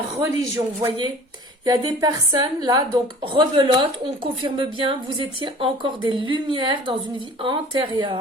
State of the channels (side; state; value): both; normal; correlation 0.45